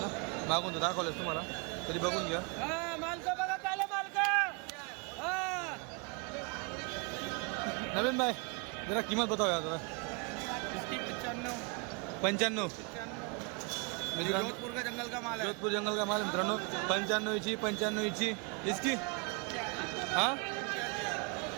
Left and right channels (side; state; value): left; quieter; 33.4 dB